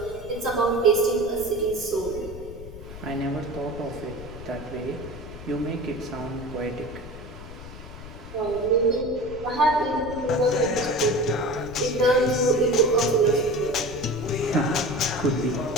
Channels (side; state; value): left; noise; rumble, 13 dB below the sound